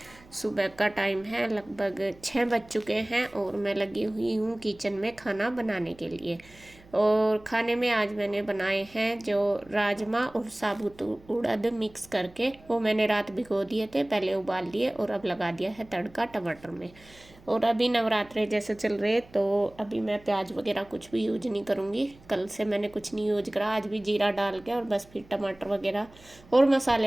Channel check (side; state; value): right; noise; hum, 25 dB below the sound